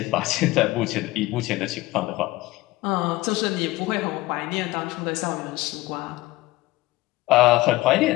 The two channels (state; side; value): quieter; right; 19.1 dB